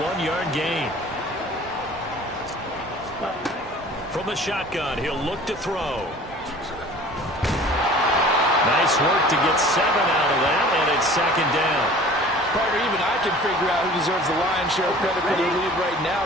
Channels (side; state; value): both; normal; correlation 0.46